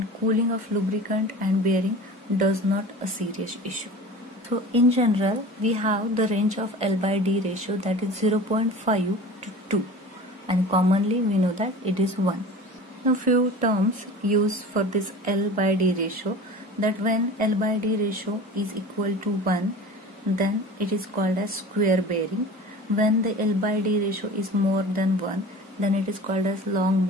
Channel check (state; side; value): normal; both; correlation 0.38